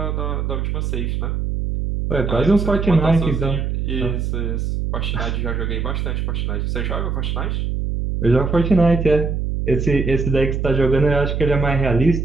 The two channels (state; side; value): noise; right; hum, 1 dB below the sound